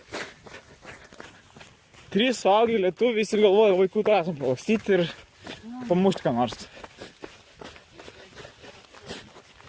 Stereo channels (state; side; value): identical; both; correlation 1.00